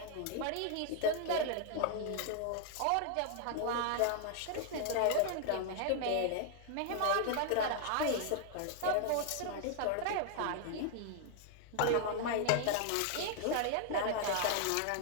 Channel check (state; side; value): different; both; correlation 0.00